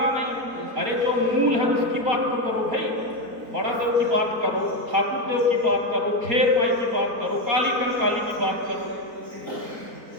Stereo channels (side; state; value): left; late; 4.2 ms